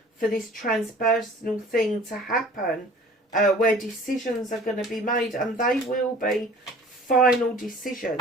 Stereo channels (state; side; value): normal; both; correlation 0.48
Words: for this transpersonal thing to happen, where decisions are going to be made, and they will be final